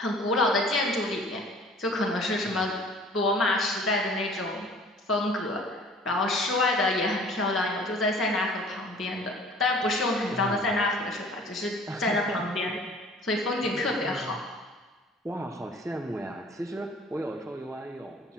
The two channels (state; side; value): normal; both; correlation 0.49